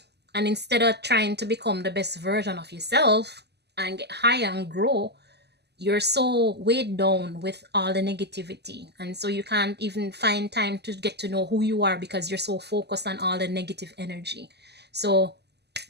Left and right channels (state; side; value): late; left; 0.49 ms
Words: and instead of trying to become the best version of yourself and get higher and grow, you're so weighed down with all the negativity, and so you can't even find time to get to know who you are because you're so focused on all the negative energy. So